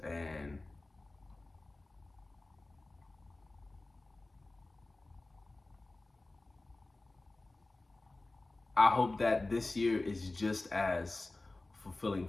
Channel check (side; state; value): right; quieter; 3.0 dB